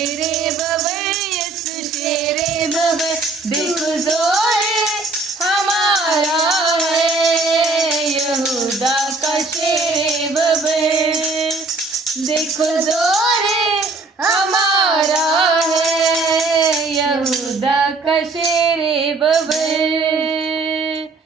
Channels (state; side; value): quieter; left; 3.6 dB